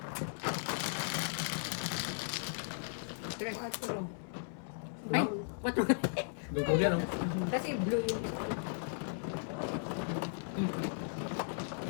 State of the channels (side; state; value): right; silent; 53 dB below the other